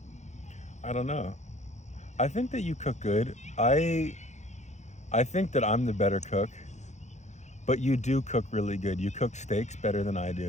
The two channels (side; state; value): right; late; 0.33 ms